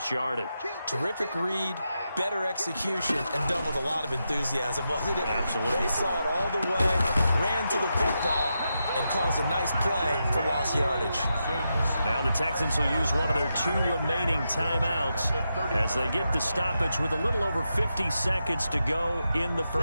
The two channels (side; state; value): both; inverted; correlation -0.86